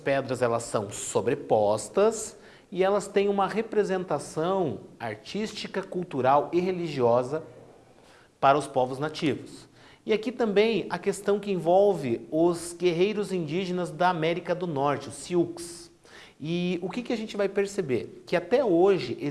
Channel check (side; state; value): both; identical; correlation 1.00